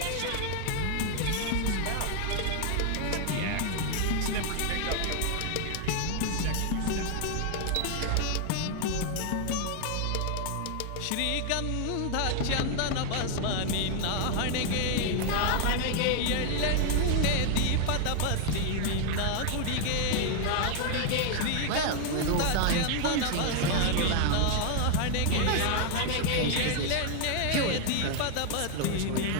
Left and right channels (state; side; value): different; both; correlation 0.00